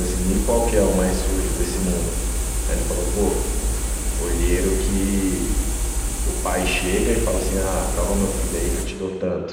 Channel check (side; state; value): both; identical; correlation 1.00